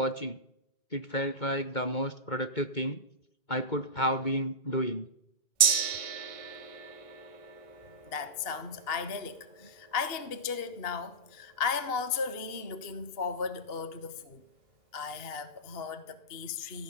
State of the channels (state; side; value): late; right; 2.7 ms